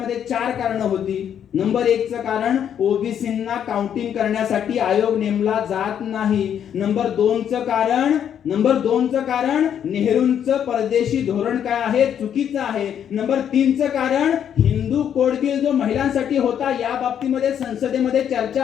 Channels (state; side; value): quieter; right; 9.1 dB